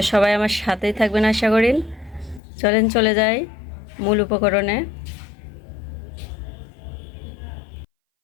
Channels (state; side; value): drops out; right; at 2.4 s